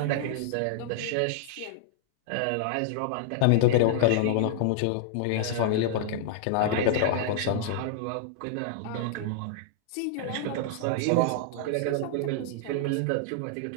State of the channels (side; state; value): both; different; correlation -0.01